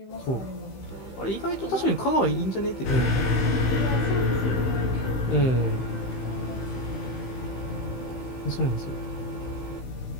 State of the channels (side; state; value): right; late; 15 ms